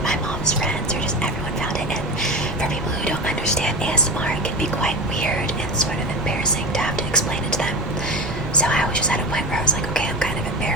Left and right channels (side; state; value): both; normal; correlation 0.27